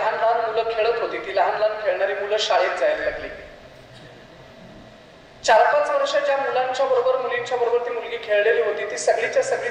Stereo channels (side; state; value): both; identical; correlation 1.00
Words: लहान मुलं खेळत होती ती लहान लहान खेळणारी मुलं शाळेत जायला लागली. 4-5 वर्ष ज्या मुलांच्या बरोबर मुलींच्या बरोबर ती मुलगी खेळलेली होती ती सगळीच्या सगळी